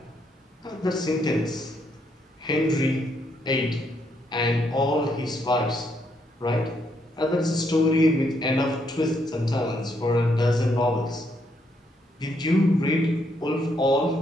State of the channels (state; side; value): normal; both; correlation 0.75